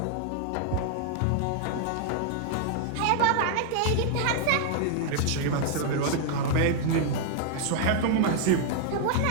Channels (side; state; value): both; different; correlation 0.00